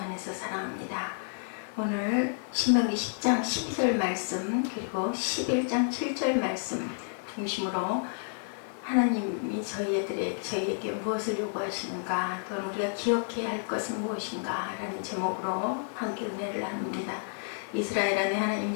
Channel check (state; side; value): silent; right; 58 dB below the other